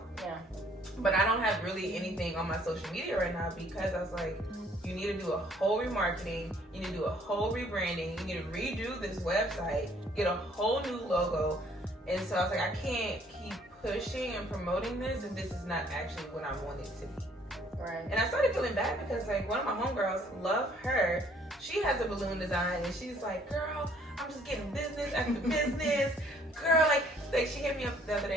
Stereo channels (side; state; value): both; normal; correlation 0.61